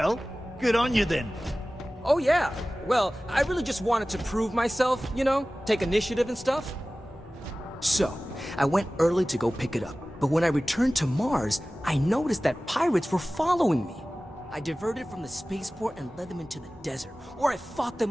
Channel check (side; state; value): both; normal; correlation 0.97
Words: good on you then. Oh yeah, well, I really just wanted to prove myself, you know, take initiative and stuff. So, I went early to go pick it up, but when I returned to Mars, I noticed that pirates were following me. I diverted from the spaceport and led them into the desert, where I fought